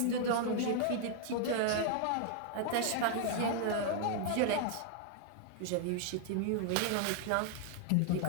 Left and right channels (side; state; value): both; different; correlation 0.00